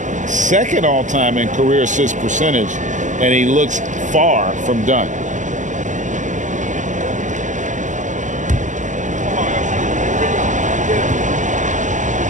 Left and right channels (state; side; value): late; left; 0.36 ms